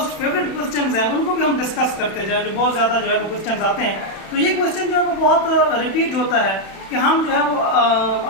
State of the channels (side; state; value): right; late; 31 ms